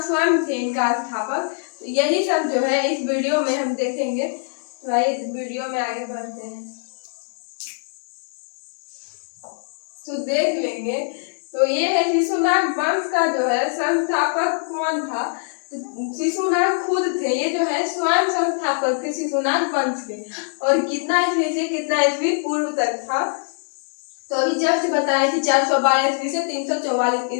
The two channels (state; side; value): silent; right; 60 dB below the other